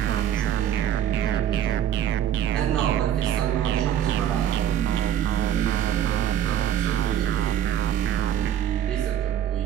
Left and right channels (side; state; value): left; quieter; 10.5 dB